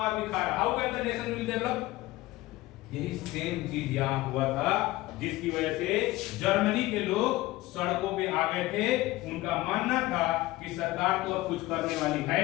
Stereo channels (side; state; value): right; quieter; 18.5 dB